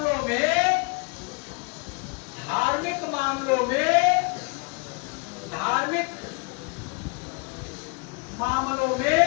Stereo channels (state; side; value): quieter; right; 31.5 dB